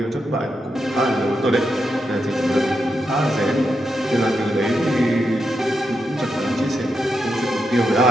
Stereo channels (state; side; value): normal; both; correlation 0.85